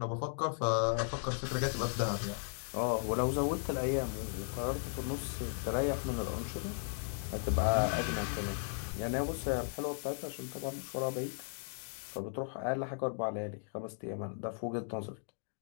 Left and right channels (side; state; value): right; silent; digital silence